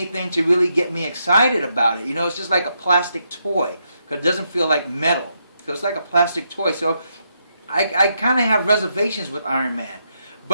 to really get me excited about it. You know, it's just like a plastic toy, because it doesn't feel like metal. So it's like a plastic toy. So I kind of have reservations with Iron Man.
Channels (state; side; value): inverted; both; correlation -0.80